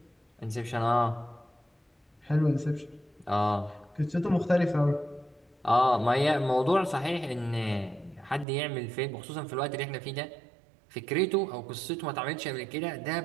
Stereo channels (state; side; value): drops out; left; at 8.5 s